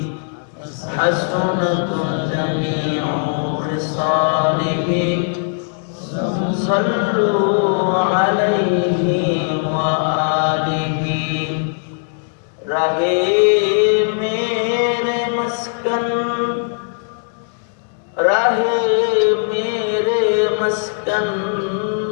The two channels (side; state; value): right; silent; 67 dB below the other